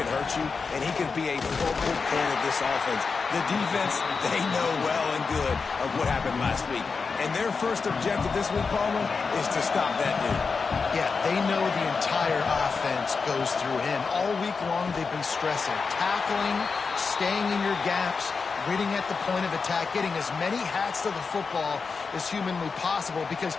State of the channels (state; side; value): quieter; right; 4.9 dB